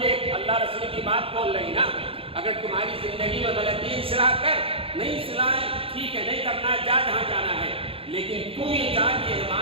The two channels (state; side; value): late; left; 0.27 ms